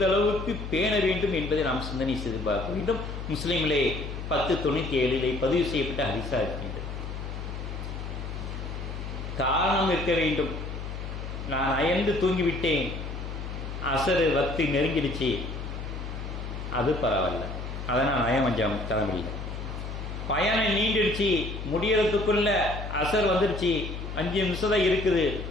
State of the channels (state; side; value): noise; left; hum, 7 dB below the sound